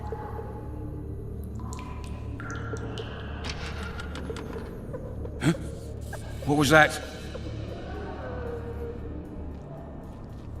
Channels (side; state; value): both; identical; correlation 1.00